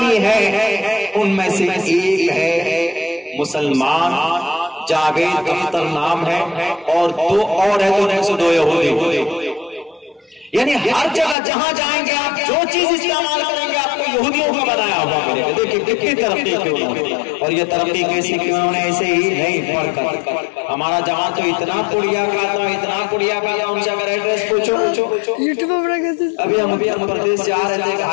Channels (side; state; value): right; drops out; at 11.4 s